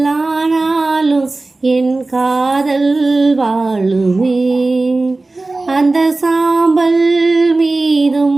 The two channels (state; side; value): quieter; left; 3.2 dB